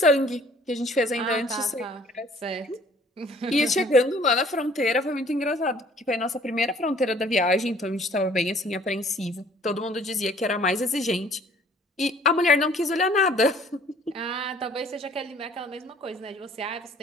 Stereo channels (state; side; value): normal; both; correlation 0.56